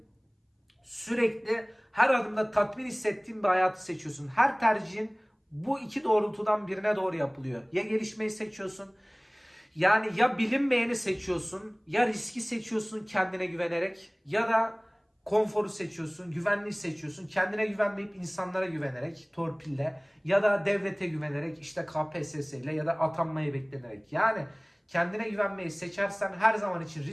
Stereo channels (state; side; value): identical; both; correlation 1.00